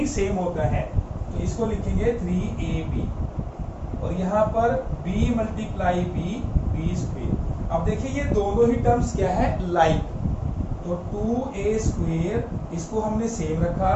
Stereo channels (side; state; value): both; identical; correlation 1.00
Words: सेम होता है, तो इसको लिखेंगे 3ab, और यहां पर b मल्टीप्लाई b स्क्वेयर। अब देखिए ये दोनों ही टर्म्स क्या है, लाइक, तो 2a स्क्वेयर इसको हमने सेम रखा,